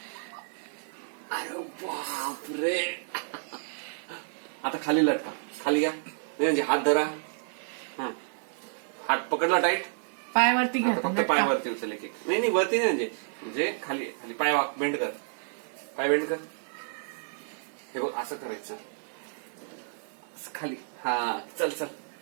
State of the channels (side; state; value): left; silent; digital silence